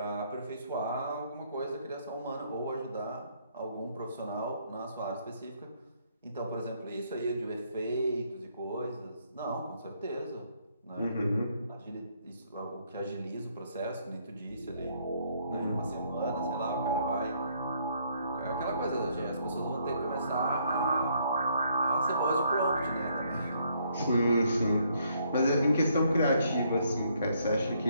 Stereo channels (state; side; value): inverted; both; correlation -0.69